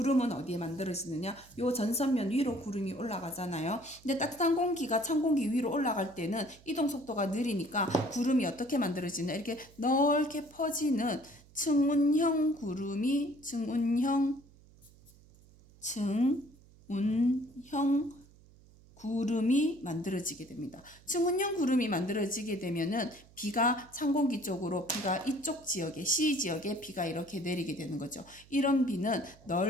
어디에 만들어지느냐? 요 전선면 위로 구름이 올라가잖아요. 근데 따뜻한 공기가 찬 공기 위로 올라갈 때는 이동 속도가 느리니까 구름이 어떻게 만들어지냐? 이렇게 넓게 퍼지는 층운형 구름이 만들어지게 됩니다. 층운형 구름이 만들어지게 되면은 비가 찬 공기 쪽으로 비가 이쪽 지역에 C 지역에 비가 이렇게 내리게 되는 거죠. 이런 비는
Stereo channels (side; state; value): right; noise; hum, 25 dB below the sound